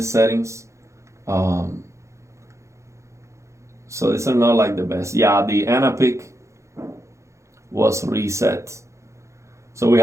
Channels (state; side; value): late; left; 0.14 ms